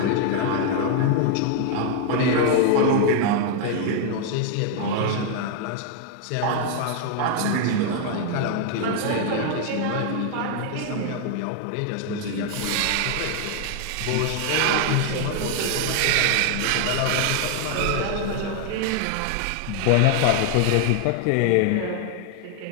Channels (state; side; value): different; both; correlation 0.00